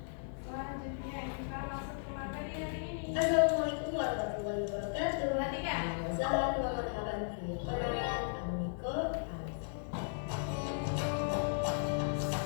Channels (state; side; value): silent; right; digital silence